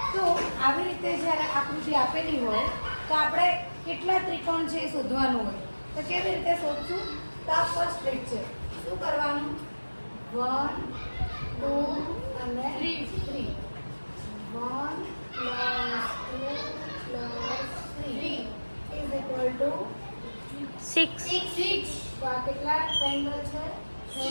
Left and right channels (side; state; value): both; inverted; correlation -1.00